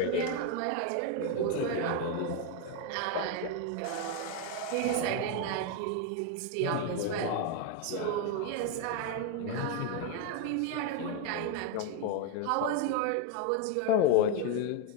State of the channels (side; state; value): both; different; correlation 0.01